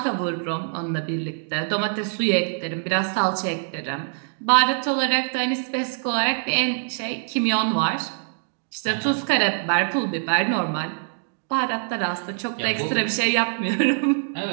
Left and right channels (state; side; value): silent; left; digital silence